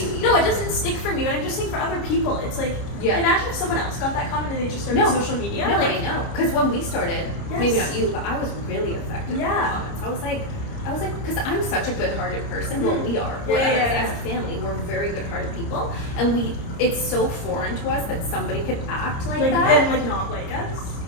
you either. no, it doesn't stick for me. But I'm just saying for other people, it's like Yeah. imagine if someone else got that comment and they just started social media. No, like, I know. Because when we started, Yes. maybe not you, but I was really affected by Yeah. the comments. I was like, because I'm such a good-hearted person. Well, we are. Yeah, We're, yeah, as a family, we're very good-hearted people, and it's so foreign to us that somebody could act like that. and like not like us.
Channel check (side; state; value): right; late; 30 ms